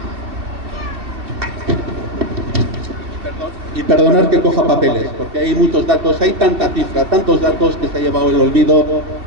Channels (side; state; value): left; late; 2.6 ms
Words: Y perdonar que coja papeles, porque hay muchos datos, hay tanta cifra, tantos datos que se ha llevado el olvido